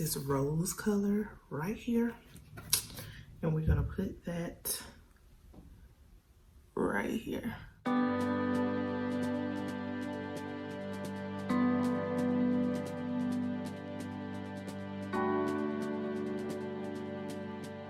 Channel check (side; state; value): both; identical; correlation 1.00